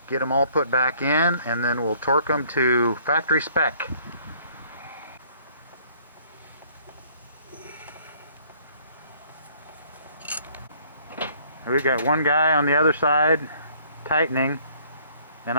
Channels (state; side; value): inverted; both; correlation -0.60